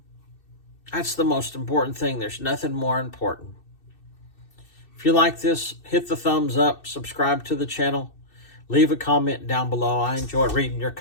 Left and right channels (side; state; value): right; late; 2.6 ms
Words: That's the most important thing. There's nothing more important. If you like this, hit the thumbs up, subscribe to the channel, leave a comment down below. I enjoy reading your